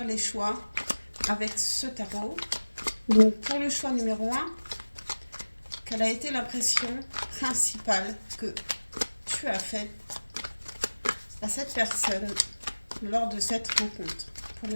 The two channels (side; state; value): both; inverted; correlation -1.00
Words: les choix avec ce tarot. Donc pour le choix numéro un, quelle a été l'impression principale que tu as faite à cette personne lors de cette rencontre? Pour